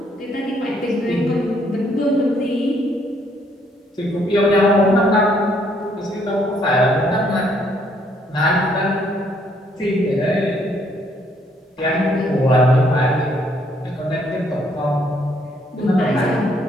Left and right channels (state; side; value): normal; both; correlation 0.68